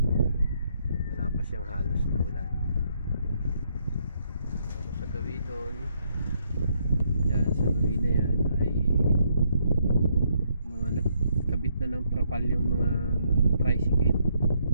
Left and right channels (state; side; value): inverted; both; correlation -0.73